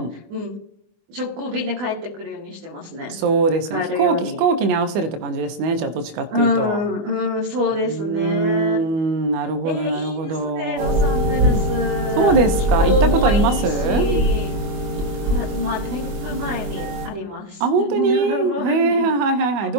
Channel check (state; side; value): late; left; 25 ms